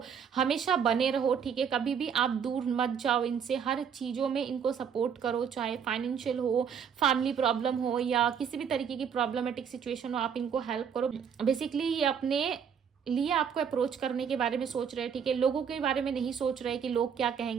हमेशा बने रहो, ठीक है। कभी भी आप दूर मत जाओ इनसे, हर चीज़ों में इनको सपोर्ट करो, चाहे फाइनेंशियल हो, फैमिली प्रॉब्लम हो, या किसी भी तरीके की प्रॉब्लमेटिक सिचुएशन हो, आप इनको हेल्प करो। बेसिकली ये अपने लिए आपको अप्रोच करने के बारे में सोच रहे हैं, ठीक है। लोगों के बारे में नहीं सोच रहे कि लोग क्या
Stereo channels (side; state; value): left; quieter; 7.4 dB